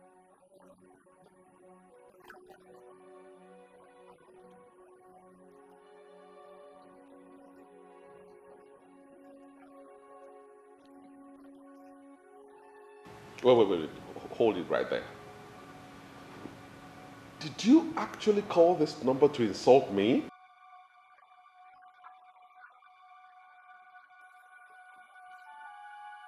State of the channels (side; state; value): both; identical; correlation 1.00